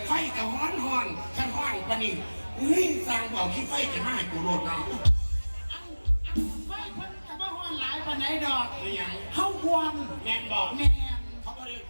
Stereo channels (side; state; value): both; inverted; correlation -1.00